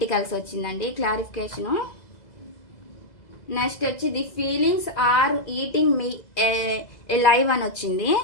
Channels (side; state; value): right; late; 2.0 ms